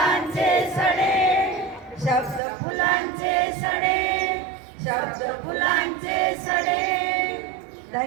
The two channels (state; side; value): drops out; left; at 2.4 s